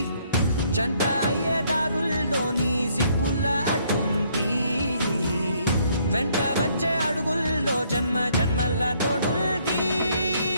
జంట అయ్యే దారుల్లోని సిగ్గుల అడ్డుంది వెంట వచ్చే అడుగుల్లో జన్మ జన్మల్ల తోడుల్ది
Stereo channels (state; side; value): inverted; both; correlation -0.67